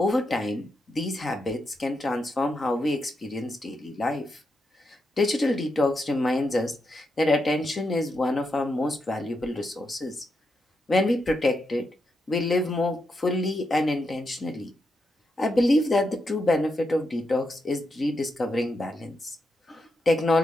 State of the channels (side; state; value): both; normal; correlation 0.84